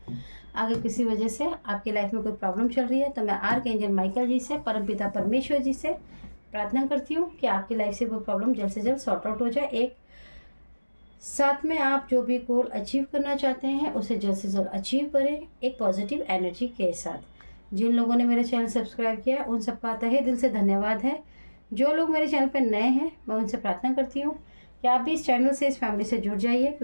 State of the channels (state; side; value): inverted; both; correlation -1.00